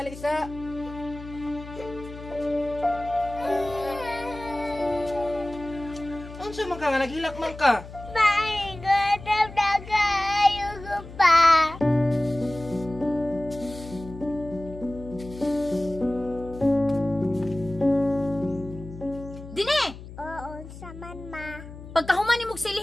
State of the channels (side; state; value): left; noise; hum, 14 dB below the sound